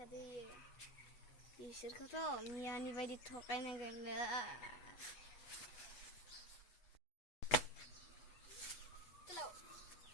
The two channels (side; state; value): right; late; 8.3 ms